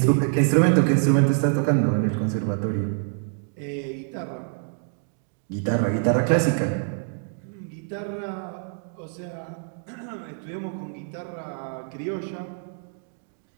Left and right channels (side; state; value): left; silent; 61 dB below the other